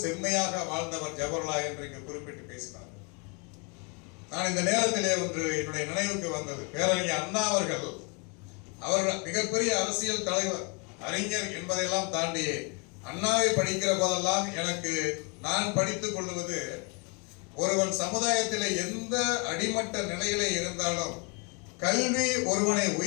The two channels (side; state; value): right; quieter; 33.1 dB